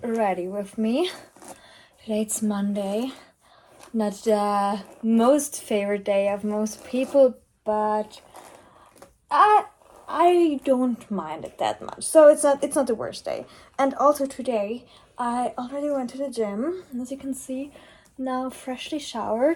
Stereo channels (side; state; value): both; identical; correlation 1.00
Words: ready with me. Today it's Monday. Not the most favorite day of most people, but I don't mind it that much. So it's not the worst day. And also today I already went to the gym, as you can see. Now freshly